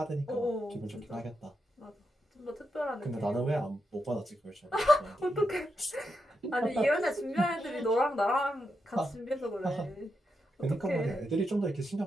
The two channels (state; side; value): normal; both; correlation 0.84